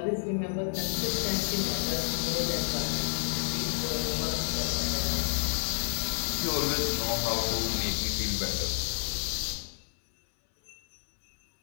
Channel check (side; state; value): right; silent; 58 dB below the other